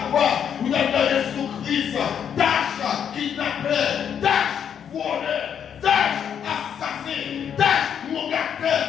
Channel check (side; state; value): right; quieter; 8.3 dB